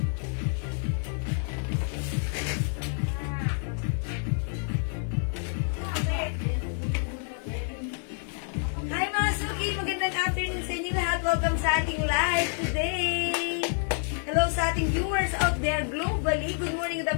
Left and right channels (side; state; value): right; silent; 59 dB below the other